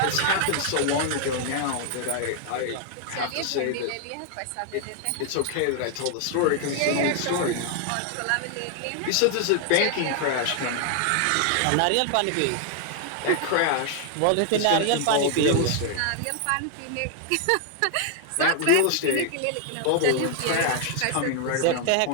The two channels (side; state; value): both; different; correlation 0.00